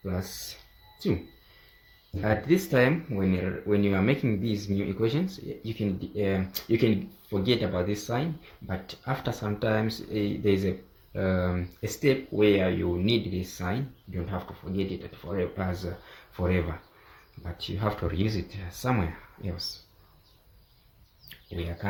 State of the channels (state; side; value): identical; both; correlation 1.00